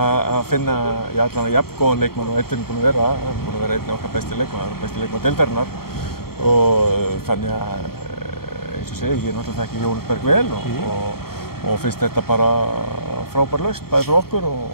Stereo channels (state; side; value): late; right; 0.94 ms